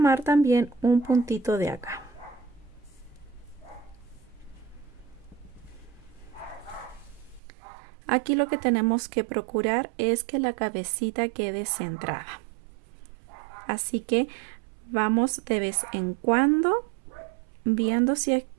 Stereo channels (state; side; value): drops out; left; at 7.4 s